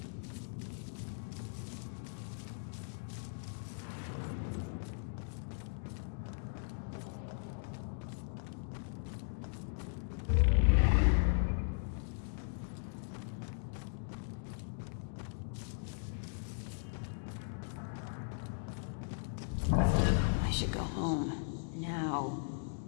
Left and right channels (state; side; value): silent; right; digital silence